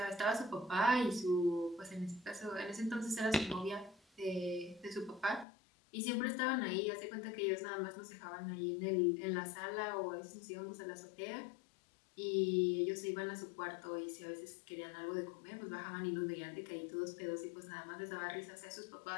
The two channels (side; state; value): right; drops out; at 5.5 s